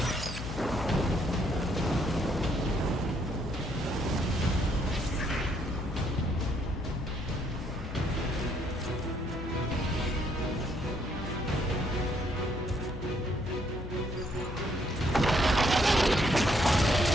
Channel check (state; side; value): noise; left; hum, 8 dB below the sound